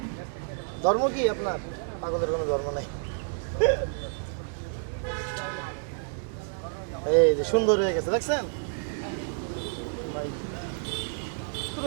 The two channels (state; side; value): silent; left; digital silence